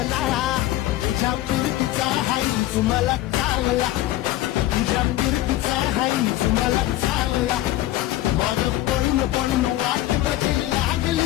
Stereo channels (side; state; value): right; quieter; 15.5 dB